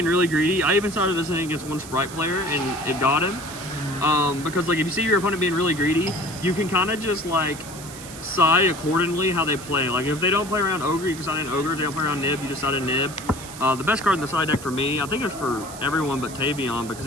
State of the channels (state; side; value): noise; right; hiss, 15 dB below the sound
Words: really greedy, I even started this in against 1 Sprite player and it got him. Because like if you see your opponent being really greedy, you can kind of just like side accordingly how they play. Like if they don't play around Ogre, you can side in Ogre. If they don't play around Nib, you just side in Nib. The best card in the side deck for me, I think it's for everyone but Tavion because